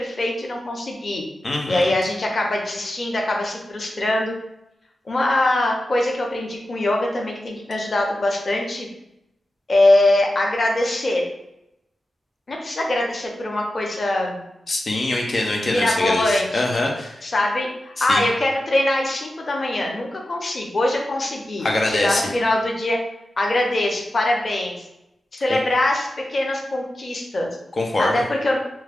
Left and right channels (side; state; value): both; normal; correlation 0.92